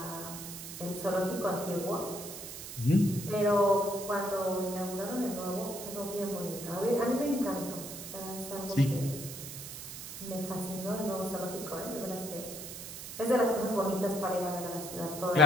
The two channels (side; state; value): right; noise; hiss, 10 dB below the sound